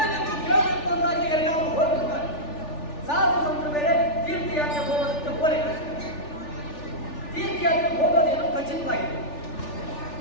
ಅಂದಾಗ ಎಲ್ಲರೂ ಹೋಗ್ಬಿಡ್ತಾರೆ. ಸಾಧು ಸಂತರು ಬೇರೆ ತೀರ್ಥಯಾತ್ರೆ ಹೋಗೋದಕ್ಕೆ ಹೋಲಿಕೆ. ತೀರ್ಥಯಾತ್ರೆ ಹೋಗೋದೇನು ಖಚಿತವಾಗಿದೆ.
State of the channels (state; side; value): late; right; 3.4 ms